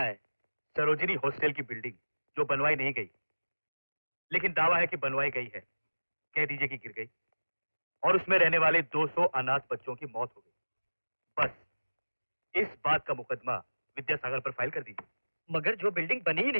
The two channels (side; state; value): both; inverted; correlation -1.00